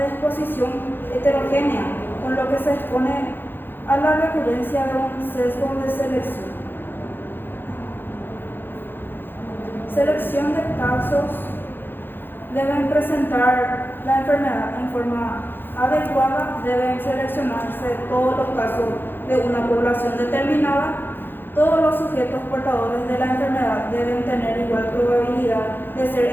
exposición heterogénea, con lo que se expone a la recurrencia de un sesgo de selección. Selección de casos. Deben presentar la enfermedad en forma adecuada, deben seleccionarse todos los casos de una población determinada. Todos los sujetos portadores de la enfermedad deben tener igual probabilidad de ser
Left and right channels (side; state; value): right; late; 0.099 ms